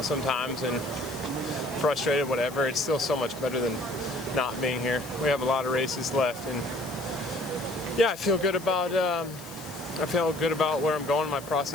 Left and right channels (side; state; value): left; noise; hiss, 17 dB below the sound